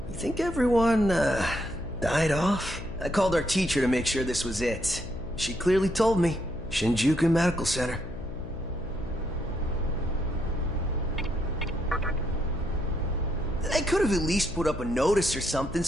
You think everyone, died off? I called our teacher to make sure this was it. She clearly told me. Shinjuku Medical Center. They could have at least put up a notice or something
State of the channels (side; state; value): left; noise; hum, 11 dB below the sound